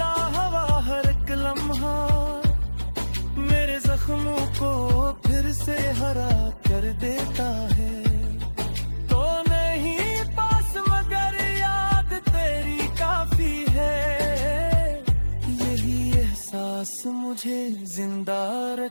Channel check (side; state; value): both; inverted; correlation -1.00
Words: हवा हर एक लम्हा, मेरे जख्मों को फिर से हरा कर देता है। तो नहीं पास मगर याद तेरी काफी है, यही एहसास मुझे जिंदा